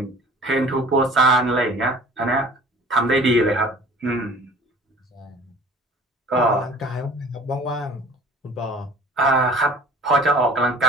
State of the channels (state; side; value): normal; both; correlation 0.48